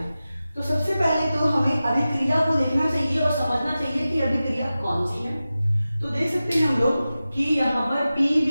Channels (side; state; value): both; inverted; correlation -0.95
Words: तो सबसे पहले तो हमें अभिक्रिया को देखना चाहिए और समझना चाहिए कि अभिक्रिया कौन सी है। तो देख सकते हैं हम लोग कि यहाँ पर